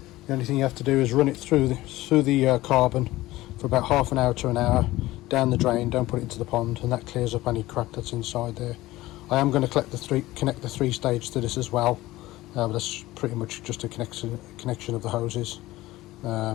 The only thing you have to do is run it through the carbon for about half an hour to an hour down the drain. Don't put it into the pond, and that clears up any crap that's inside there. I am going to connect the three stage to this as well, but that's pretty much just a connection of the hoses.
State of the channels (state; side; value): quieter; right; 17.5 dB